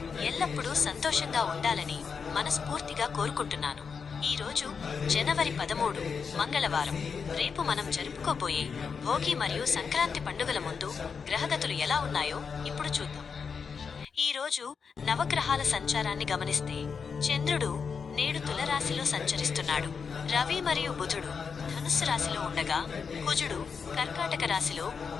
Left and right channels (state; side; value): quieter; right; 5.8 dB